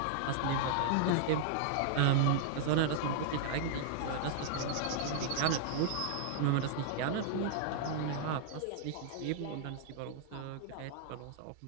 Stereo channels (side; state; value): both; different; correlation -0.01